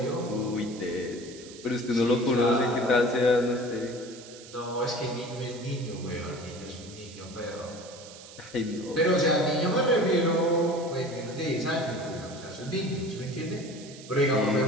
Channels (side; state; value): right; noise; hiss, 17 dB below the sound